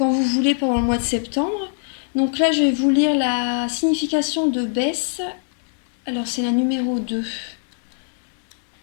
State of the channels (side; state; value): right; silent; digital silence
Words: vous voulez pendant le mois de septembre. Donc là, je vais vous lire la signification de Bess. Alors c'est la numéro 2.